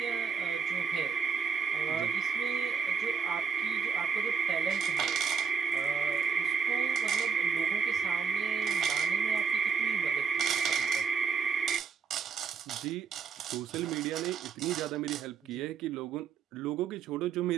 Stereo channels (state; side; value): quieter; left; 6.0 dB